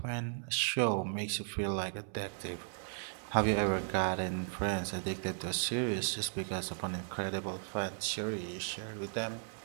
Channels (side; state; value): left; silent; digital silence